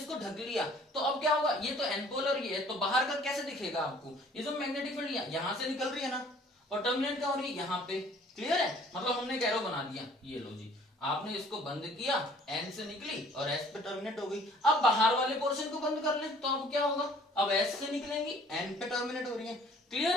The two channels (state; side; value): normal; both; correlation 0.55